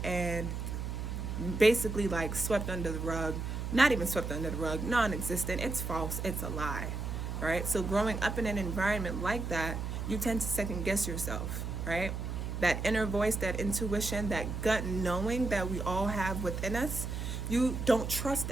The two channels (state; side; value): noise; right; hum, 4 dB below the sound